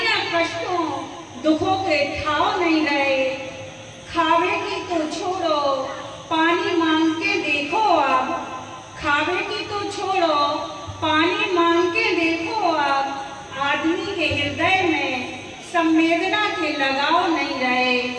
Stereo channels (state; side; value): identical; both; correlation 1.00